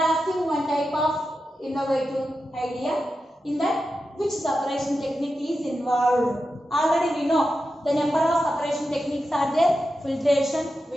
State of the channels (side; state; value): both; normal; correlation 0.90